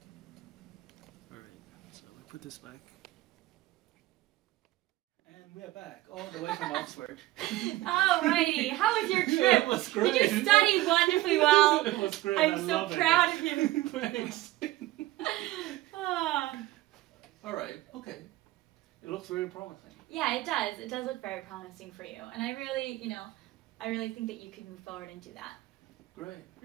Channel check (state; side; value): quieter; left; 17.4 dB